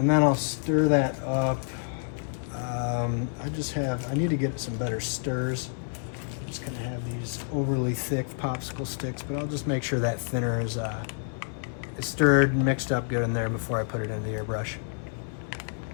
then I'll stir that up. I need to get some better stirs. Just gonna have these overly thick popsicle sticks, but I'll just make sure that thinner is stirred and mixed up good in there before I put it in the airbrush.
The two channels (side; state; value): right; silent; digital silence